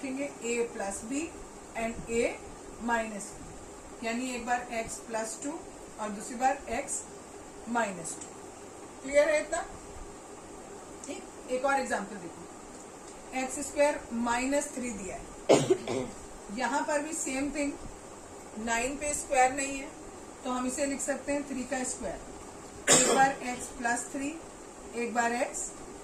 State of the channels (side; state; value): both; identical; correlation 1.00